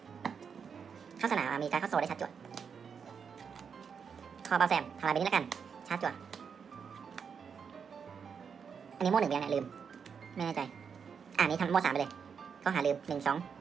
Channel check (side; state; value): left; quieter; 6.5 dB